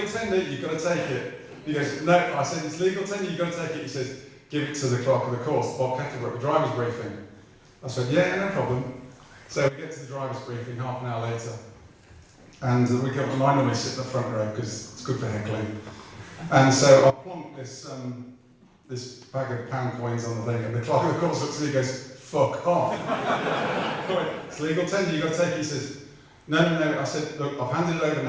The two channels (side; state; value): both; identical; correlation 1.00